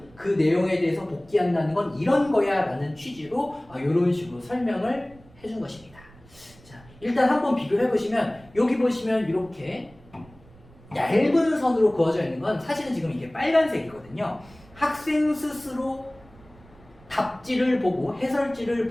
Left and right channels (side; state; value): right; noise; rumble, 24 dB below the sound